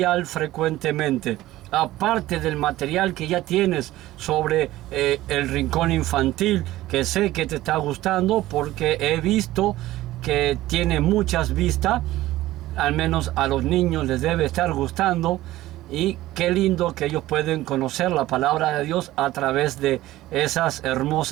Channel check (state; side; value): quieter; left; 16.1 dB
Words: frecuentemente. Aparte del material que ya tienes sobre el rincón infantil, que sé que te está gustando porque he visto que tiene muchas vistas, al menos a los niños les debe estar gustando. Y qué lindo que ellos pueden conocer la palabra de Dios a través de esas